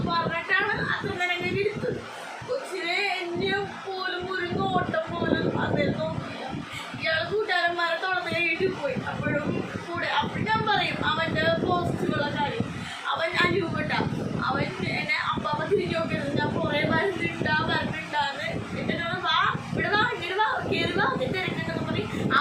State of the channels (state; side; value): identical; both; correlation 1.00